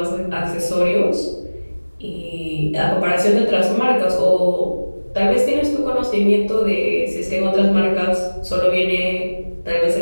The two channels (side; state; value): both; inverted; correlation -1.00